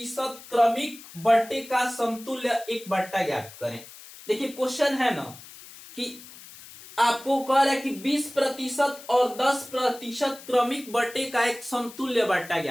क्रमिक बट्टे का समतुल्य एक बट्टा ज्ञात करें। देखिए क्वेश्चन है ना कि आपको कह रहा है कि 20% और 10% क्रमिक बट्टे का एक समतुल्य बट्टा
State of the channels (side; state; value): left; noise; hiss, 18 dB below the sound